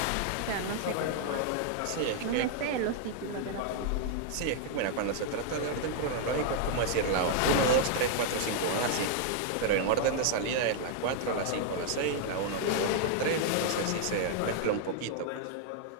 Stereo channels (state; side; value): different; both; correlation 0.00